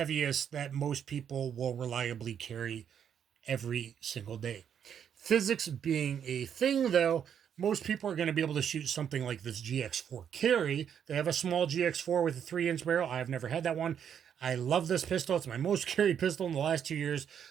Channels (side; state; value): left; quieter; 8.5 dB